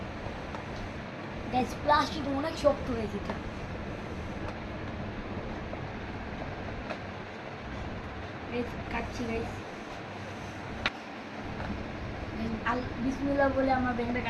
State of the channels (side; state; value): both; identical; correlation 1.00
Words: গাইস প্লাস্টিক অনেক শক্ত হয়েছে এটা গাইস, কাটছি গাইস। বিসমিল্লাহ বলে আমরা ব্যাংকটা